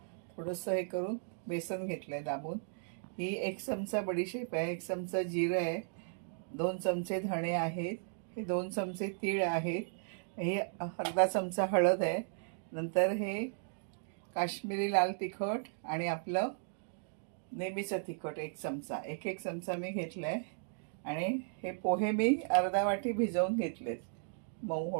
थोडंसं हे करून बेसन घेतलं आहे दाबून. ही 1 चमचा बडीशेप आहे, 1 चमचा जिरं आहे, 2 चमचे धणे आहेत, हे 2 चमचे तीळ आहेत, हे अर्धा चमचा हळद आहे. नंतर हे काश्मीरी लाल तिखट आणि आपलं नेहमीचं तिखट 1 चमचा, एक चमचा मी घेतलं आहे. आणि हे पोहे मी अर्धा वाटी भिजवून घेतलेत मऊ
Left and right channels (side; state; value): left; silent; digital silence